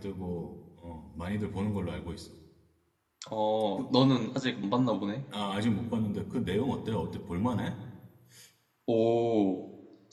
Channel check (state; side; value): identical; both; correlation 1.00